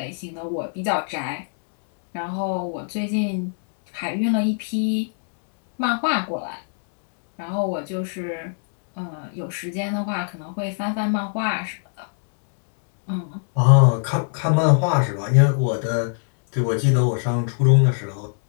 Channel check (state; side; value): silent; right; digital silence